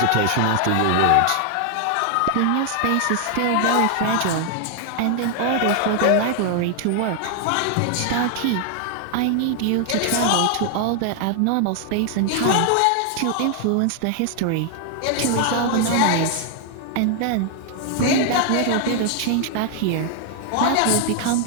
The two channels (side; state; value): both; different; correlation 0.00